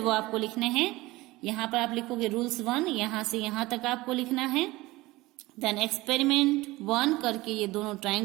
आपको लिखने हैं। यहाँ पर आप लिखोगे रूल्स 1, यहाँ से यहाँ तक आपको लिखना है। देन एक्सपेरिमेंट 1 करके ये दोनों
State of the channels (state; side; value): quieter; left; 19.9 dB